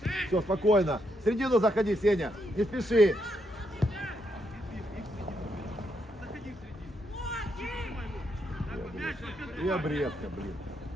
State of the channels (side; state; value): both; normal; correlation 0.78